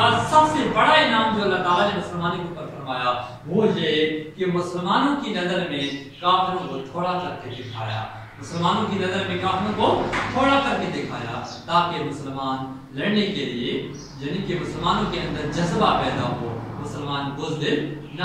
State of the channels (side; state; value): both; identical; correlation 1.00